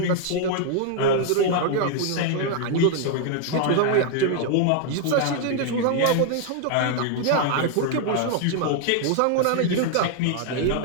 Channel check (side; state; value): both; different; correlation 0.00